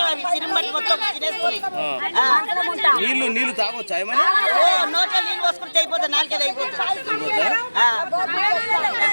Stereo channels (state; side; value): inverted; both; correlation -1.00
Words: అవి. సిరిమట్టి మొత్తం తినేస్తున్నాయి. నీళ్లు తాగొచ్చా ఏమన్నా? నోట్లో నీళ్ళు పోసుకుంటే అయిపోతుంది, నాలుగేది అయిపోతుంది.